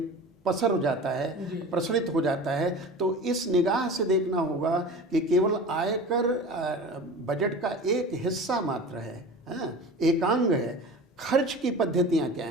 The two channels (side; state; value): both; normal; correlation 0.35